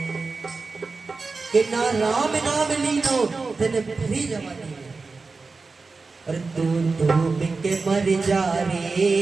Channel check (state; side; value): quieter; left; 4.1 dB